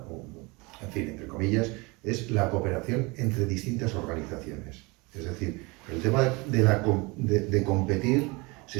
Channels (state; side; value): quieter; left; 26.0 dB